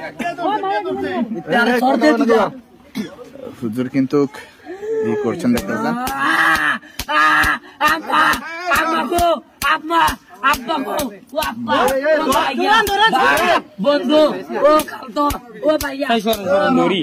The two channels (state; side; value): identical; both; correlation 1.00